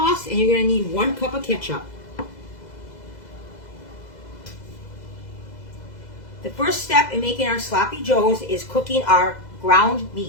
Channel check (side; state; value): right; late; 2.0 ms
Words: and you're going to need 1 cup of ketchup. The first step in making our sloppy joes is cooking our ground